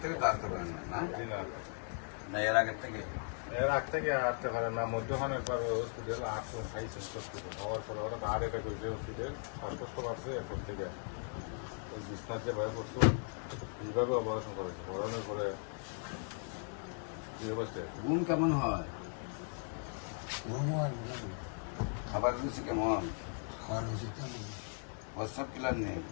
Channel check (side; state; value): right; silent; 53 dB below the other